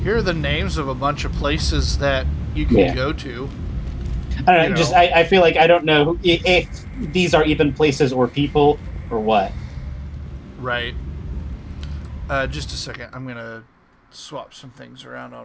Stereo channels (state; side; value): identical; both; correlation 1.00